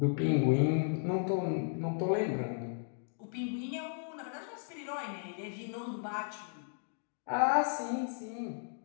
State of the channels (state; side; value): silent; right; digital silence